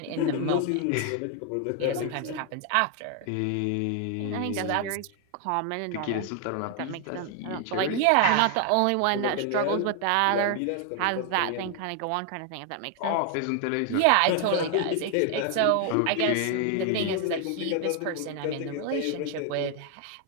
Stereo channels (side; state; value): both; different; correlation 0.00